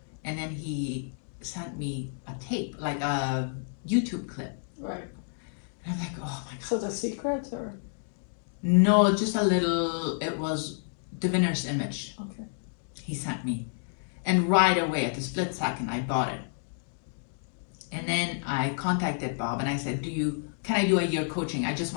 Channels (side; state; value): right; silent; digital silence